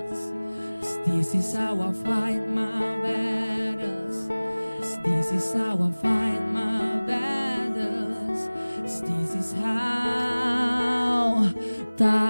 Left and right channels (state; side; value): inverted; both; correlation -1.00